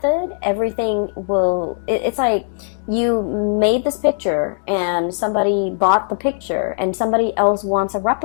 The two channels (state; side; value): silent; right; digital silence